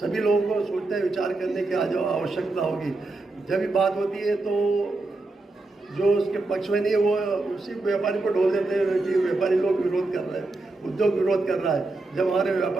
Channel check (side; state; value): left; quieter; 3.2 dB